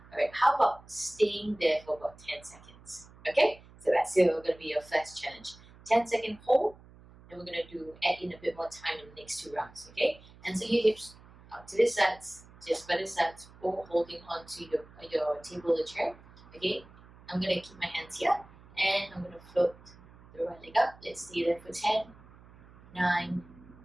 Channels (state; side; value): noise; right; hum, 23 dB below the sound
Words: alright, how about staying there for about 10 seconds? Okay, so that's going to be your first challenge. 10-second hold, and we're going to add in a bit more time in the next 2 rounds. Okay, and so your hips out to the sides, just by the sides, or holding onto your table or chair. Okay, I'm going to keep my hands here and I'm going to float the right leg up. Let's stay there for 10, 9,